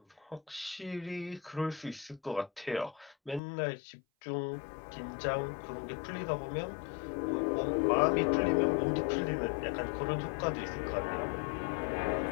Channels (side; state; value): right; drops out; at 3.4 s